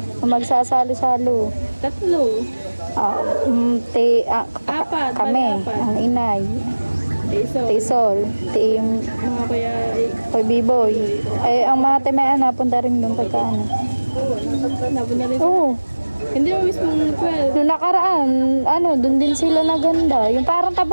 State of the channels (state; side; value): inverted; both; correlation -1.00